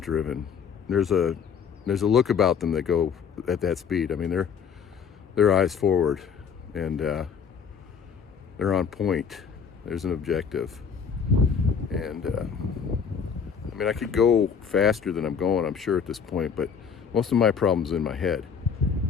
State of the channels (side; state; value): right; quieter; 6.7 dB